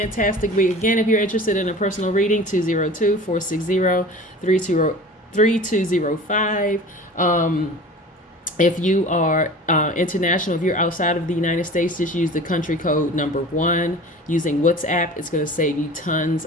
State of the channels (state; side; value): normal; both; correlation 0.39